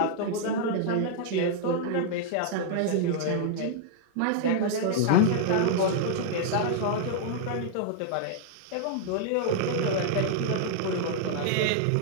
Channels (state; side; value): different; both; correlation 0.00